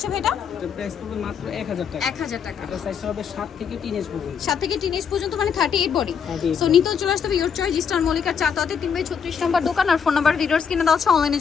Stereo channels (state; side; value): quieter; right; 6.9 dB